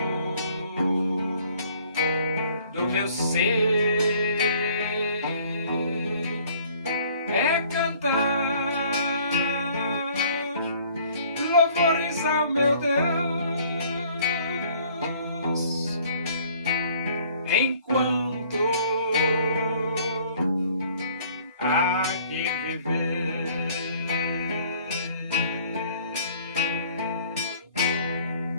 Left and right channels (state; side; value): inverted; both; correlation -0.56